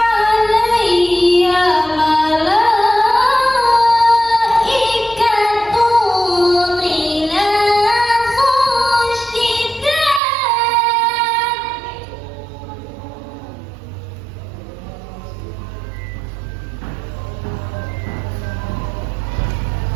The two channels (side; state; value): left; drops out; at 10.2 s